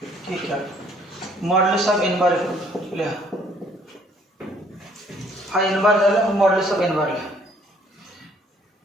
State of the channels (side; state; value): both; normal; correlation 0.62